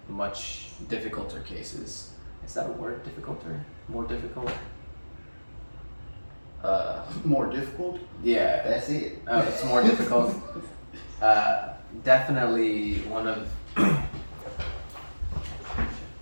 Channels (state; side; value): inverted; both; correlation -1.00